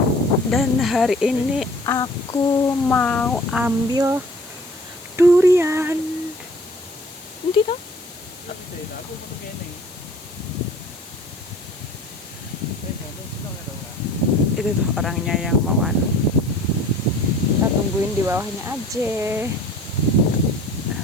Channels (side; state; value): left; noise; hiss, 19 dB below the sound